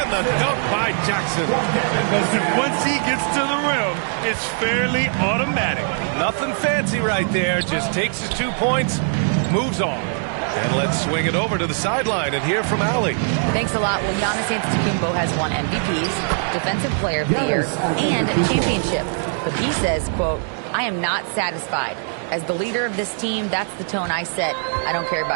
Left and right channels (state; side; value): silent; left; 65 dB below the other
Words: the dunk by Jackson. Once he gets to the rim, it's fairly automatic. Nothing fancy right there. Just takes his 2 points, moves on. And let's swing it over to the sideline and hear from Allie. Thanks a lot. Well, Giannis Antetokounmpo has won MVPs, Defensive Player of the Year, and a championship. But he says, quote, I am not satisfied. As the leader of this team, that's the tone I set. I don't care